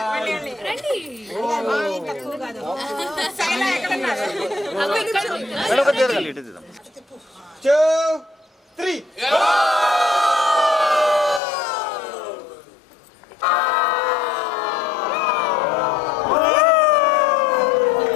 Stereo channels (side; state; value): right; drops out; at 11.4 s